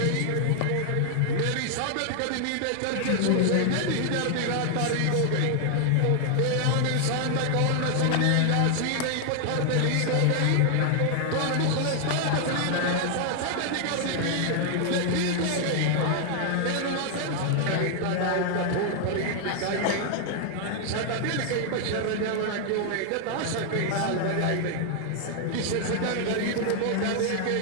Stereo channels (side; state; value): both; different; correlation 0.00